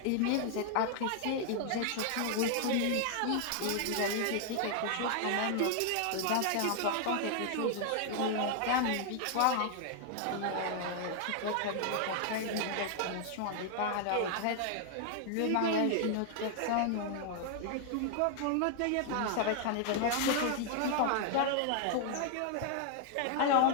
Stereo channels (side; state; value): both; different; correlation 0.00